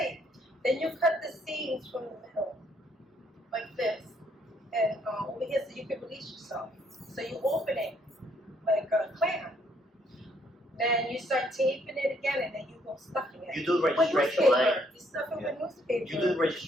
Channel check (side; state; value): both; normal; correlation 0.68